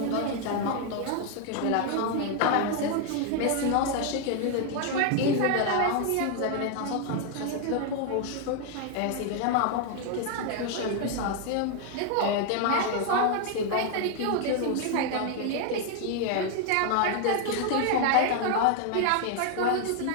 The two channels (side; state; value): both; different; correlation 0.00